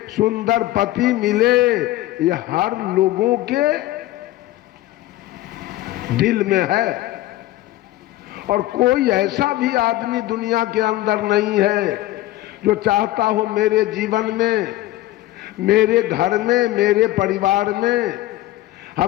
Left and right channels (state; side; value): quieter; right; 16.1 dB